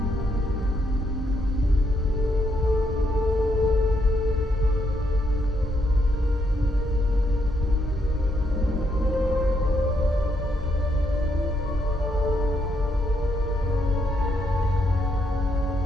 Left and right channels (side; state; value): both; normal; correlation 0.76